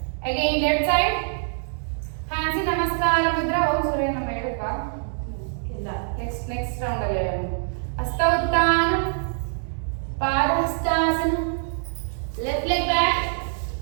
Again left side, hands in namaskara mudra. Om Surya Nama ಹೇಳಪ್ಪ. ಇಲ್ಲ. Next round ಅಲ್ಲಿ ಹೇಳೋಣ. ಹಸ್ತ ಉತ್ಥಾನ, ಪಾದಹಸ್ತಾಸನ, left leg back,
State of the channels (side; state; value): left; silent; 62 dB below the other